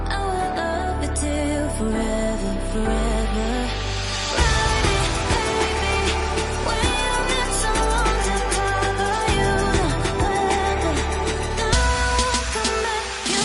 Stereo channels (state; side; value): identical; both; correlation 1.00